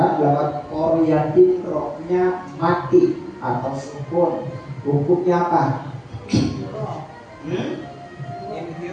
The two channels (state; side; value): identical; both; correlation 1.00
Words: lafaz qaryati rohnya mati atau sukun. Hukumnya apa?